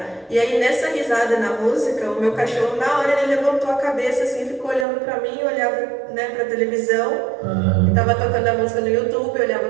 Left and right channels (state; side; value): drops out; left; at 4.9 s